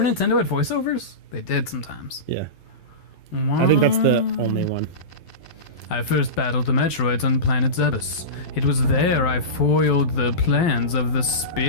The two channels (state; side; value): late; right; 12 ms